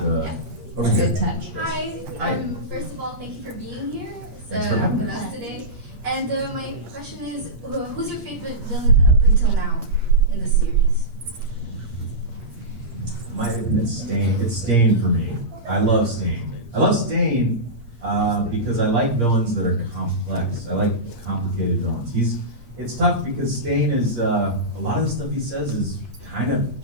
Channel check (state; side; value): late; left; 8.6 ms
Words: Over here. Good touch. Hi. First of all, thank you for being here Thanks for having with us. us today. And my question is, who's your favorite villain up until now in the series? It's Stain. It's Stain for me. I love Stain. I love Stain because I like villains that are complex. I like complicated villains. It's tough because Stain is a lot of the stuff he says is kind of